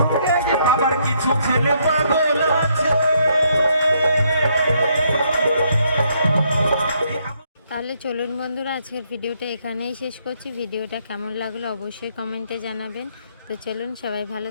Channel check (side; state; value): both; inverted; correlation -0.72